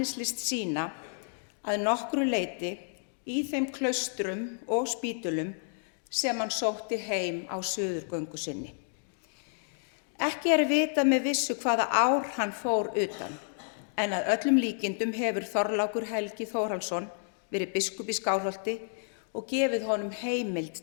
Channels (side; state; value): right; silent; digital silence